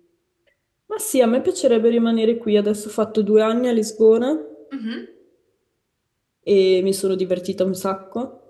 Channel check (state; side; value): identical; both; correlation 1.00